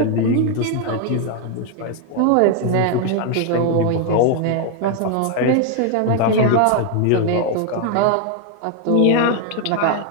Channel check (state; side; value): different; both; correlation 0.01